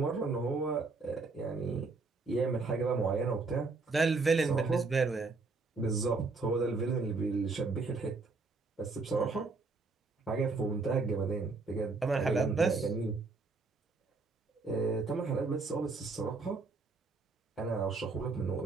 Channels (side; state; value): left; quieter; 4.0 dB